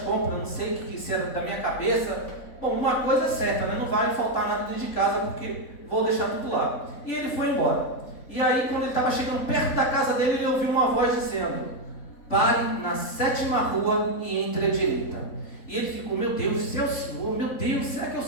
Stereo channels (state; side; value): late; right; 3.4 ms